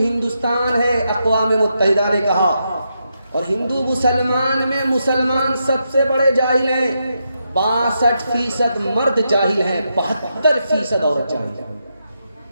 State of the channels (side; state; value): both; inverted; correlation -0.83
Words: ہے, اقوام متحدہ نے کہا. اور ہندو مسلمان میں مسلمان سب سے بڑے جاہل ہیں. 62% مرد جاہل ہیں, 72% عورت جاہل ہیں.